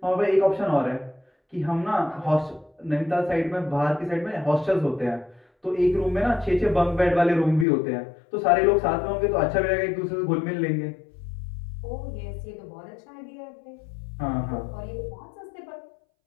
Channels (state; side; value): drops out; right; at 7.7 s